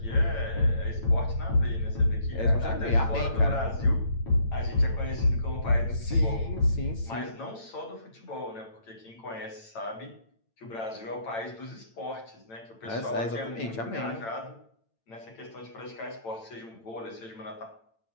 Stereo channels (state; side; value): late; right; 8.9 ms